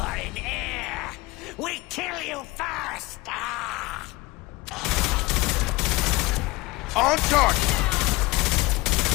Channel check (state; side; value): quieter; right; 21.4 dB